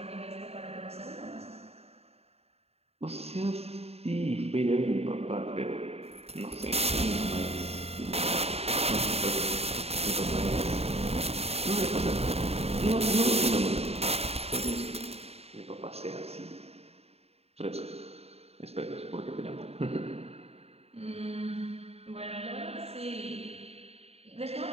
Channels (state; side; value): late; left; 0.30 ms